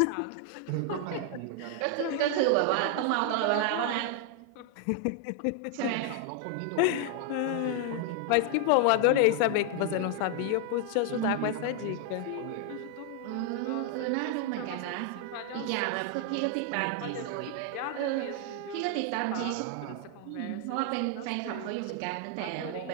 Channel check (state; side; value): different; both; correlation 0.00